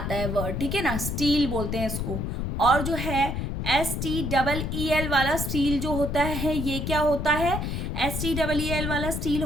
है वर्ड, ठीक है ना, स्टील बोलते हैं इसको। और जो है STEEL वाला स्टील जो होता है, ये क्या होता है? STEEL वाला स्टील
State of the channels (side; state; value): left; noise; rumble, 2 dB below the sound